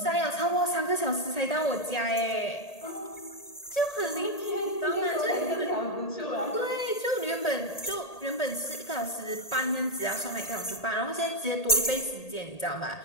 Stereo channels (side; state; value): right; late; 1.8 ms